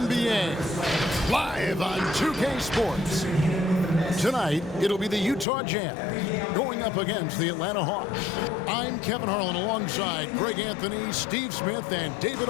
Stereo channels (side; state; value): right; drops out; at 5.5 s